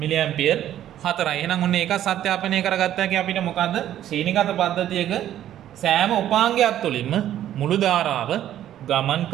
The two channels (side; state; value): left; quieter; 11.8 dB